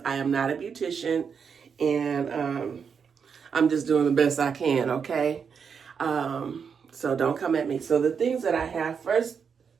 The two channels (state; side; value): quieter; left; 6.5 dB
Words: I am not a beautician, and I'm just doing the best I can, okay? So don't come at me. So the things that I have, first